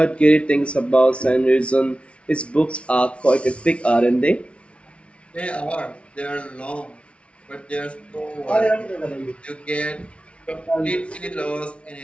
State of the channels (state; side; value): late; right; 0.061 ms